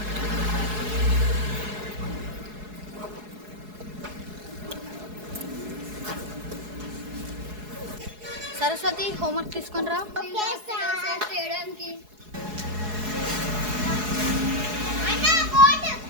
సరస్వతి, హోంవర్క్ తీసుకొని రా.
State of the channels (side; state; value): left; late; 4.7 ms